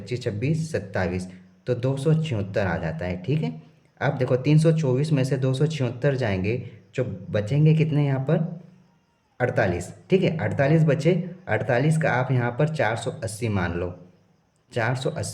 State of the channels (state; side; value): identical; both; correlation 1.00